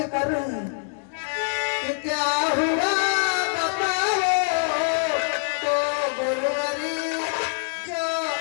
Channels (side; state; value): right; silent; 55 dB below the other